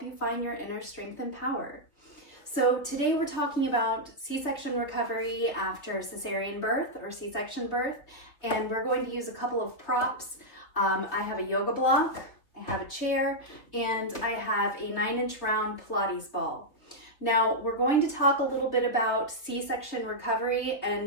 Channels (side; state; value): right; late; 3.3 ms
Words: you find your inner strength and power. So today we're talking about C-section recovery after cesarean birth or C-section birth, and we're going to use a couple of props. I have a yoga block, I have a chair, and I have a 9-inch round Pilates ball. Now we're going to talk a little bit about C-section recovery